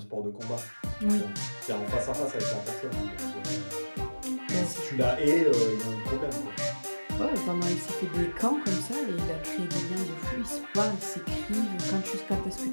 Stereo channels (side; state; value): both; inverted; correlation -1.00